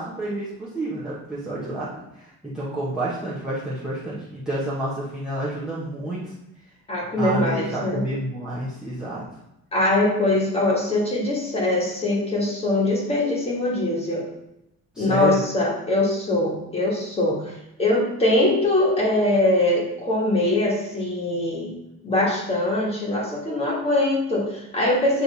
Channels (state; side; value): normal; both; correlation 0.27